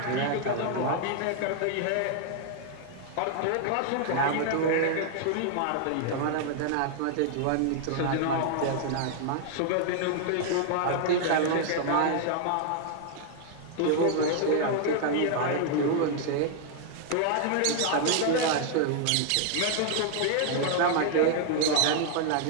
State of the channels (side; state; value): both; different; correlation 0.00